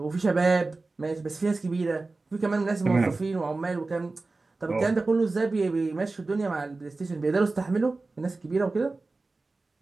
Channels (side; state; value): left; quieter; 3.5 dB